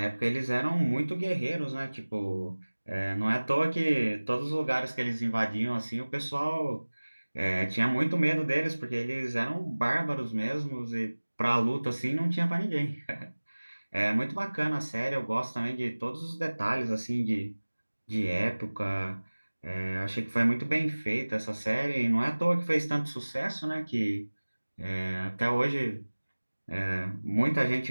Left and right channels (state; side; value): inverted; both; correlation -1.00